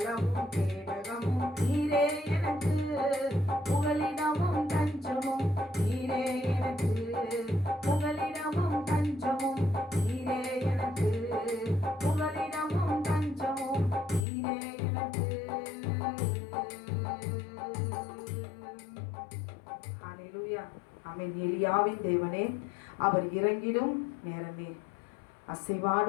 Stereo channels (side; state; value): right; drops out; at 14.2 s